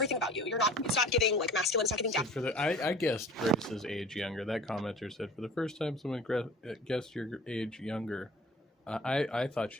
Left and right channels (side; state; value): both; normal; correlation 0.44